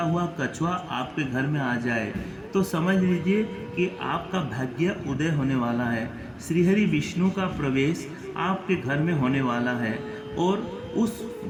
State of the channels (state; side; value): identical; both; correlation 1.00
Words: हुआ कछुआ आपके घर में आ जाए तो समझ लीजिए कि आपका भाग्य उदय होने वाला है। श्रीहरि विष्णु का प्रवेश आपके घर में होने वाला है और उस